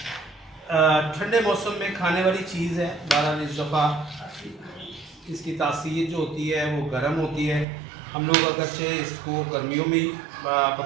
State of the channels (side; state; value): left; drops out; at 7.7 s